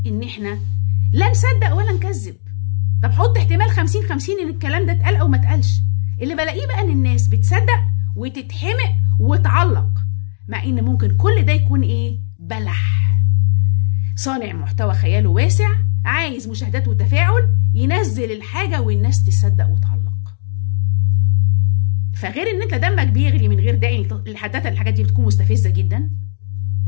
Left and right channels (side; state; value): right; silent; 69 dB below the other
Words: ان احنا لا نصدق ولا نكذب. طب حط احتمال 50-50 ان الكلام ده اتقال او ما اتقالش. اللي بلاقيه بقى ان الناس بتصدق وتتحمق وتعلق، مع ان ممكن كل ده يكون ايه؟ بلح. صانع محتوى خياله واسع، عايز مشاهدات وتفاعل، ينزل الحاجة والناس تصدق وتعلق. فغير ان انت دمك بيغلي من غير داعي، الحاجات دي بتكون مستفزة جدا.